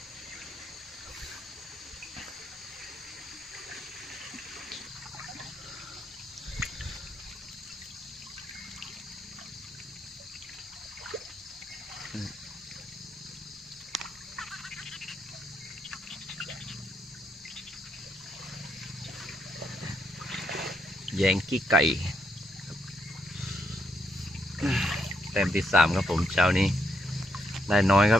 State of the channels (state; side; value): normal; both; correlation 0.77